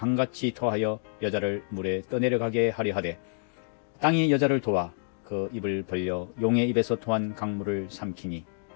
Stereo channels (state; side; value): silent; right; digital silence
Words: 토하여 여자를 물에 떠내려가게 하려 하되 땅이 여자를 도와 그 입을 벌려 용의 입에서 토한 강물을 삼키니